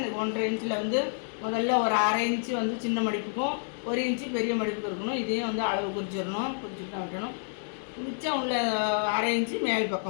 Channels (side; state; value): right; silent; digital silence